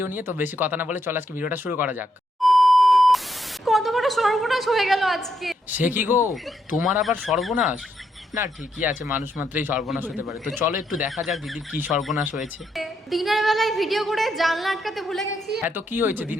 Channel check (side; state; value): both; normal; correlation 0.78